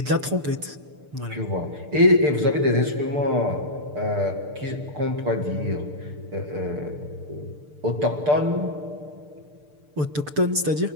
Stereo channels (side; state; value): left; late; 6.8 ms